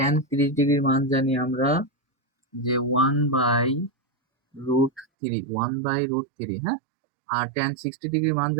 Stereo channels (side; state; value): left; drops out; at 5.1 s